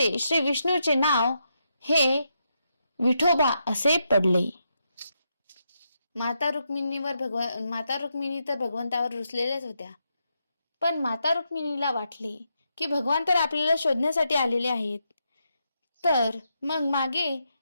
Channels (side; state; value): both; inverted; correlation -0.82